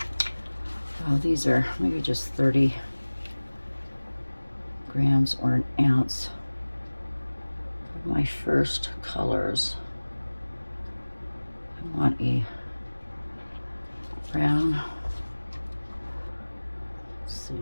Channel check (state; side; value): inverted; both; correlation -1.00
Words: oh, these are maybe just 30 grams or an ounce of my first colors. I want a brown, let's